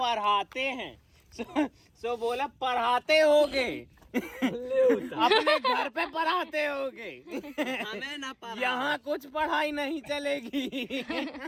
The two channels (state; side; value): identical; both; correlation 1.00